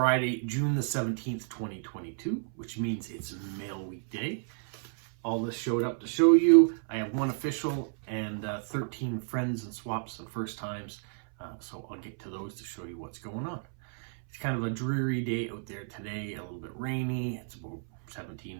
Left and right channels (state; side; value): silent; left; 57 dB below the other